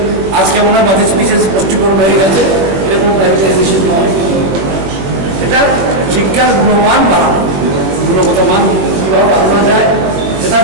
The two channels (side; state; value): left; late; 21 ms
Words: আজকে মনে হয় বাজেট স্পিচে স্পষ্টীকরণ হয়ে গেছে, এরকম প্রাইভেটাইজেশন নয়। এটা শিক্ষার গুণমান বাড়ানো, গুণগত মান কীভাবে বাড়ানো যায় সেটার